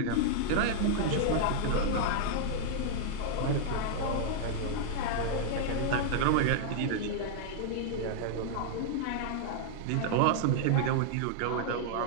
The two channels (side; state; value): both; different; correlation -0.01